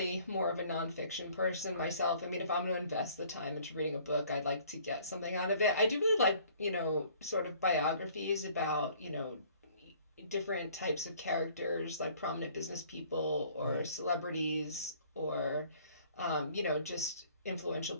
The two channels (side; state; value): both; inverted; correlation -0.56